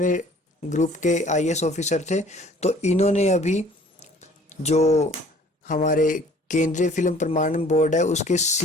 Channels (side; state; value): both; normal; correlation 0.53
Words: ग्रुप के आईएएस ऑफिसर थे। तो इन्होंने अभी जो हमारे केंद्रीय फिल्म प्रमाणन बोर्ड है उसके